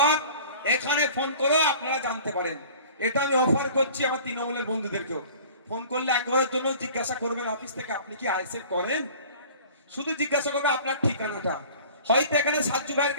এখানে ফোন করে আপনারা জানতে পারেন। এটা আমি অফার করছি আমার তৃণমূলের বন্ধুদেরকেও। ফোন করলে একবারের জন্য জিজ্ঞাসা করবেন অফিস থেকে আপনি কি আইএসএফ করেন, শুধু জিজ্ঞাসা করবে আপনার ঠিকানাটা। হয়তো এখানে সাজ্জু ভাইয়ের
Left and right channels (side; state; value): both; inverted; correlation -0.46